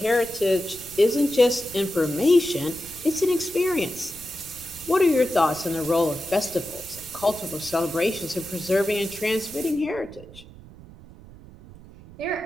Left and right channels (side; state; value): right; noise; rumble, 19 dB below the sound